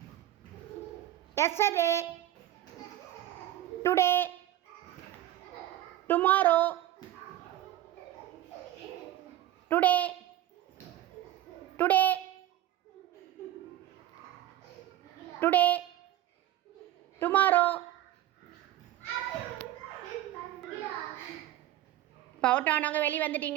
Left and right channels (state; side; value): quieter; left; 13.4 dB